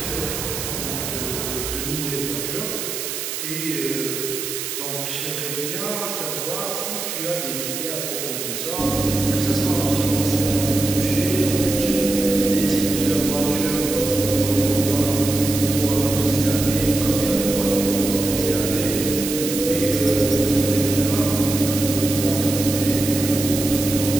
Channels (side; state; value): right; noise; hiss, 5 dB below the sound